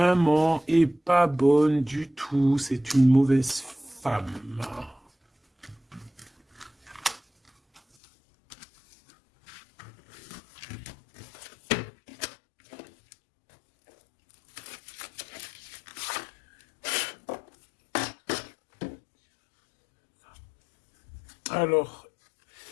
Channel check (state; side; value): drops out; right; at 7.8 s